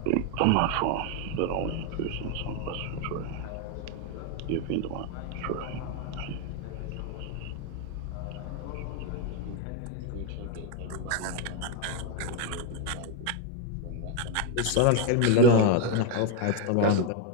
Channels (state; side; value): different; both; correlation 0.01